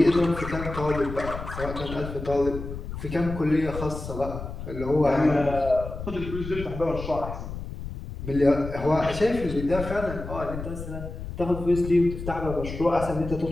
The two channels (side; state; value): left; noise; rumble, 8 dB below the sound